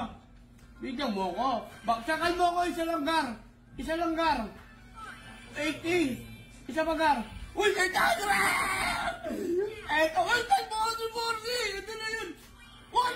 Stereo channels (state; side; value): identical; both; correlation 1.00